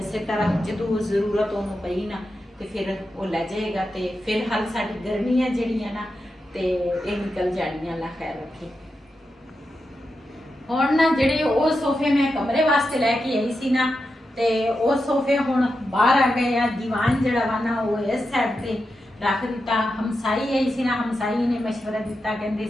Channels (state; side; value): normal; both; correlation 0.88